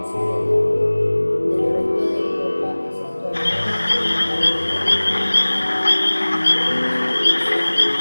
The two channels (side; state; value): both; inverted; correlation -1.00